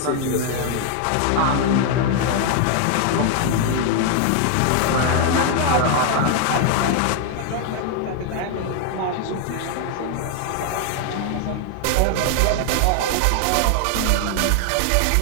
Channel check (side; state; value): both; different; correlation 0.00